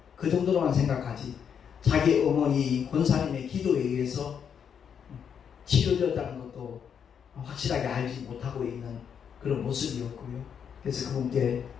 그 정도로만 생각하지 자기 어머니 권사님의 기도에 의해서 치료되었다는 것도 확실하게 알지 못하고 있는 그런 모습이었고요. 그래서 그분께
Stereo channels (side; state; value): right; quieter; 7.6 dB